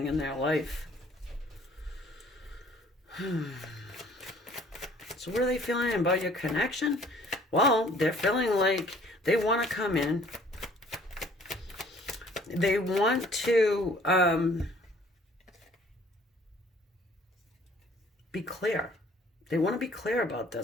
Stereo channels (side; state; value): both; normal; correlation 0.56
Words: in their life. So what are they feeling about your connection? Well, they're feeling like they want to come in. They want to be clear. They want to be clear about